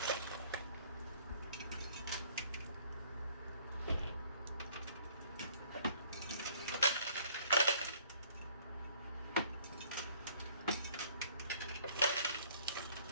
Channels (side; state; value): both; inverted; correlation -0.58